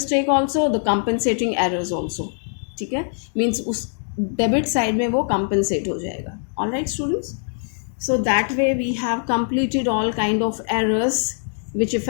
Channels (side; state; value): right; silent; digital silence